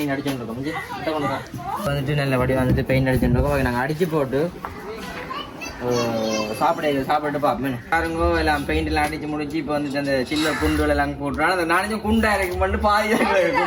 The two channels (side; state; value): both; identical; correlation 1.00